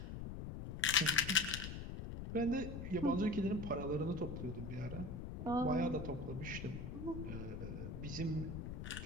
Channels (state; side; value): noise; left; rumble, 6 dB below the sound